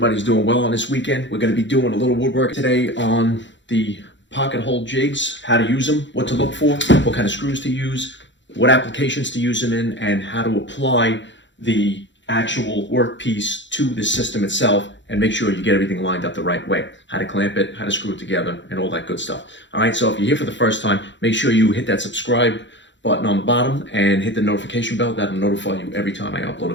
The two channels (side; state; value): right; late; 0.54 ms